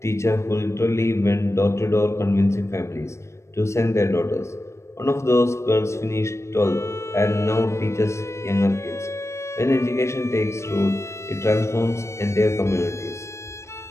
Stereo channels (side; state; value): right; late; 0.13 ms